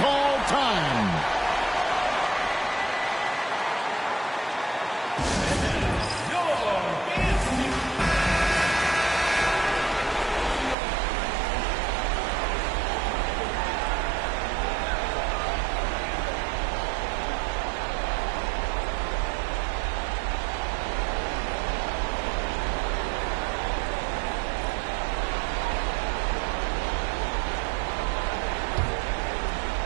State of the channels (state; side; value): drops out; left; at 10.8 s